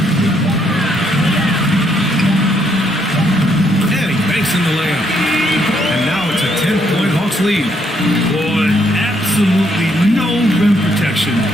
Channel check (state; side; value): normal; both; correlation 0.72